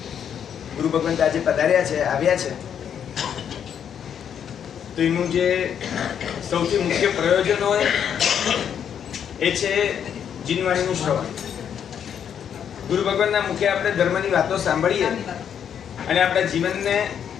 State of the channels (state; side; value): quieter; right; 8.5 dB